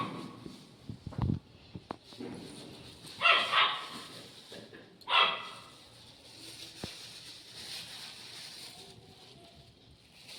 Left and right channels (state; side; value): identical; both; correlation 1.00